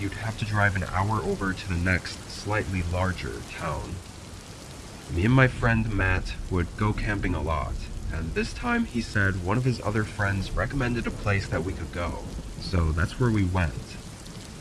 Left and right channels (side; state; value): both; identical; correlation 1.00